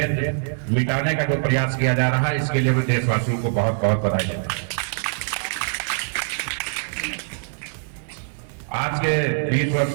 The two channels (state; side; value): silent; left; 63 dB below the other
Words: मिटाने का जो प्रयास किया जा रहा है, इसके लिए मैं देशवासियों को बहुत बहुत बधाई देता हूं। आज के 20 वर्ष